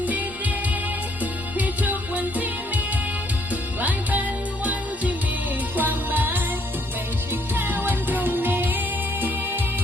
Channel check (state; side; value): normal; both; correlation 0.67